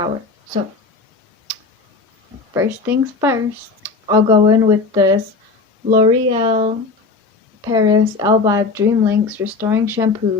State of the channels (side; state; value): right; quieter; 4.1 dB